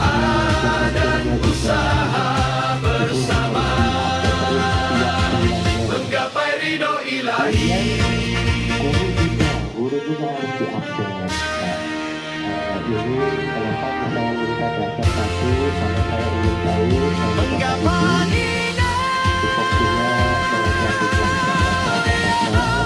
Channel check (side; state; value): both; identical; correlation 1.00